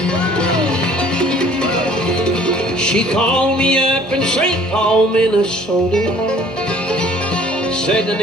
She called me up in St. Paul, Minnesota, said I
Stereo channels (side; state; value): both; normal; correlation 0.54